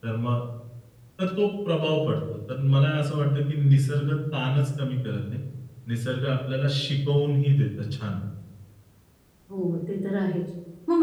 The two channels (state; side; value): identical; both; correlation 1.00